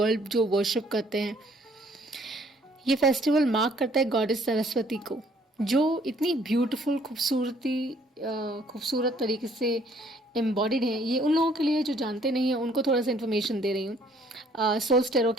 जो वर्शिप करते हैं। ये फेस्टिवल मार्क करता है गॉडेस सरस्वती को, जो इतनी ब्यूटीफुल खूबसूरत तरीके से एम्बॉडीड है। ये उन लोगों के लिए जो जानते नहीं हैं, उनको थोड़ा सा इन्फॉर्मेशन दे रही हूँ सोल्स टेरो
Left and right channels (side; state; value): both; normal; correlation 0.62